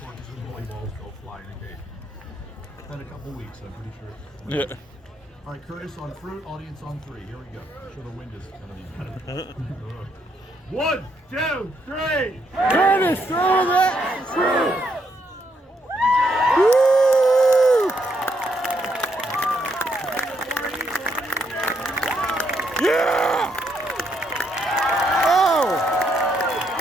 and volleyballs go fly in a cage. It's been a couple weeks, I'm pretty sure. Yeah. All right, Curtis on fruit, audience on 3. Here we go. I'm sure the wind is going to be better. 1, 2, 3. Curtis, throw that fruit! Woo! Yeah! Oh!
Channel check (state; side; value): normal; both; correlation 0.76